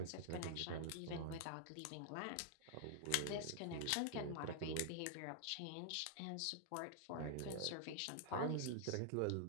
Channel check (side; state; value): both; different; correlation -0.01